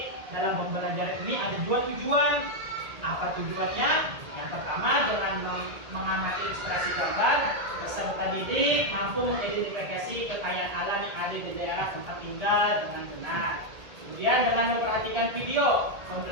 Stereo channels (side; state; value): left; late; 1.8 ms